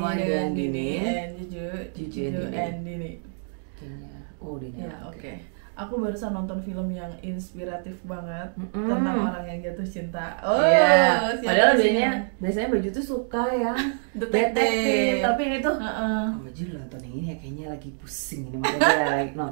dengan Dini Dini and Juju and Dini. Kayaknya, udah Ya oke. Aku barusan nonton film yang inspiratif banget tentang orang yang jatuh cinta. Iya. Siapa Padahal sih biasanya baju tuh suka yang detektif. tapi yang itu Heeh. Baju nonton yang ini ya kayaknya lagi pusing ini, makanya lagi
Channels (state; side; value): silent; left; digital silence